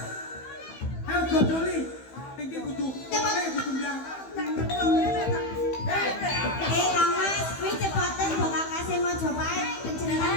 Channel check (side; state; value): right; late; 15 ms